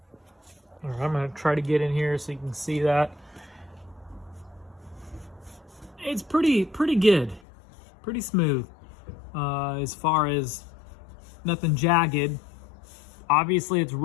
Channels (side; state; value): right; drops out; at 7.4 s